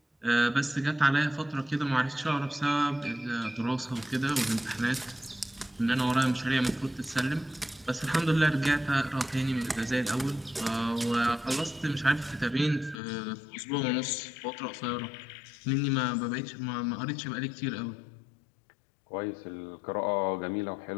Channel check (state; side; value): drops out; right; at 13.0 s